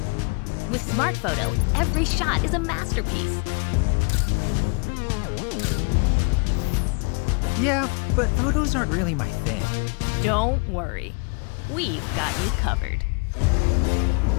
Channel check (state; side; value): quieter; right; 34.0 dB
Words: With Smart Photo, every shot is a masterpiece. Yeah, but photos aren't really my thing. Don't worry, we've got you covered.